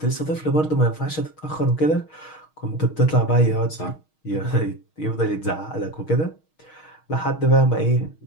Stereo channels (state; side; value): late; right; 6.4 ms